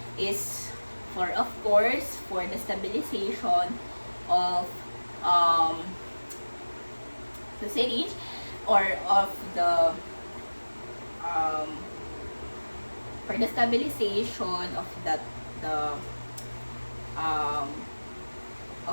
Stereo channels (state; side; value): inverted; both; correlation -1.00